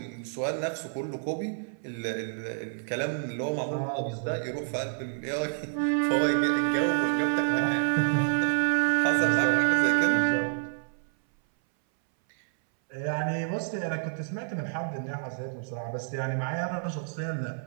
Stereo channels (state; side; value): silent; left; 59 dB below the other